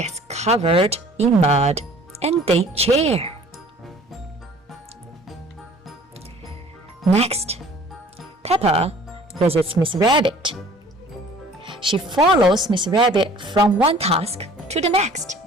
covered in mud and they cheer. Next, Peppa visits Miss Rabbit. She follows Miss Rabbit from one task to the next.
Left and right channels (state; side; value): normal; both; correlation 0.51